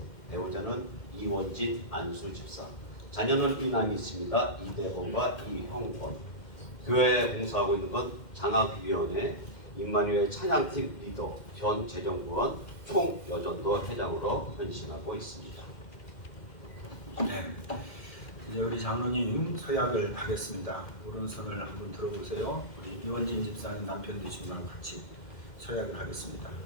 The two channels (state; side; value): late; right; 2.1 ms